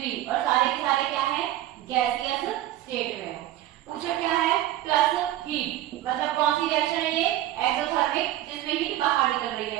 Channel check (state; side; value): quieter; left; 14.0 dB